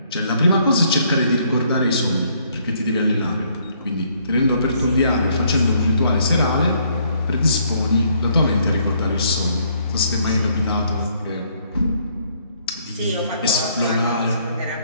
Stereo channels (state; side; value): inverted; both; correlation -0.67